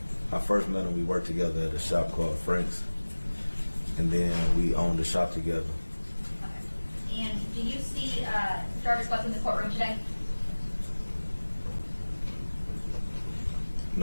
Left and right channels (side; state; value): both; inverted; correlation -1.00